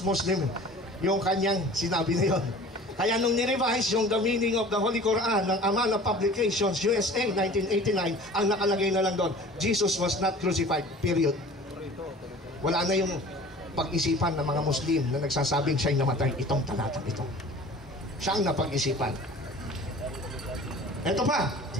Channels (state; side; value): normal; both; correlation 0.44